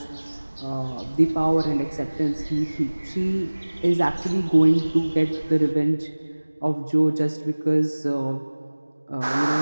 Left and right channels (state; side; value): inverted; both; correlation -1.00